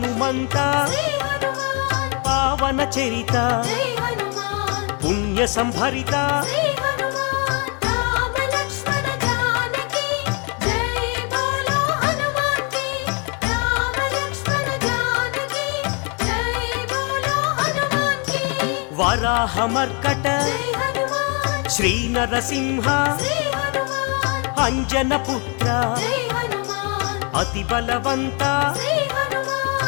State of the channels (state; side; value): quieter; right; 34.2 dB